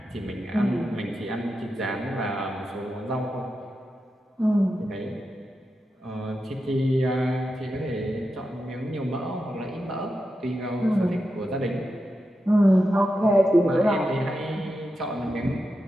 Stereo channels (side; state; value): both; normal; correlation 0.89